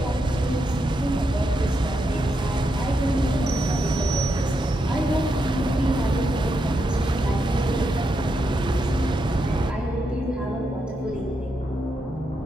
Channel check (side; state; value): both; normal; correlation 0.83